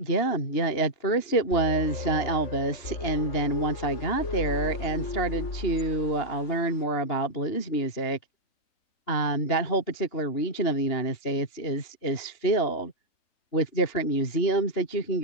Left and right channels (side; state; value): right; late; 2.9 ms